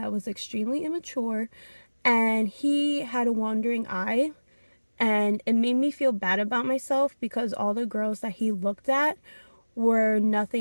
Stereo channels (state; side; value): inverted; both; correlation -1.00